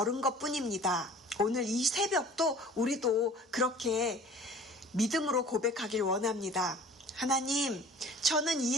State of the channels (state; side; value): normal; both; correlation 0.46